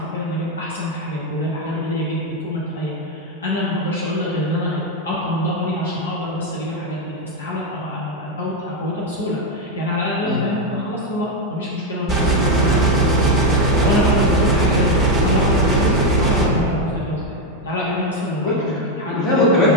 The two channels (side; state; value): both; normal; correlation 0.05